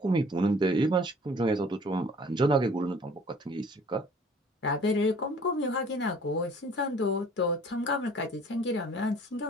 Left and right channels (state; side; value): normal; both; correlation 0.52